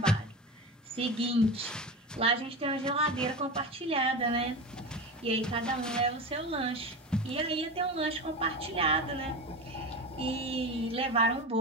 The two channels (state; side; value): normal; both; correlation 0.25